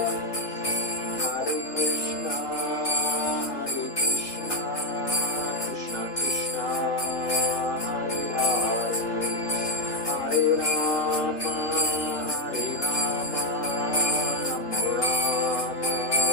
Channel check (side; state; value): right; late; 3.3 ms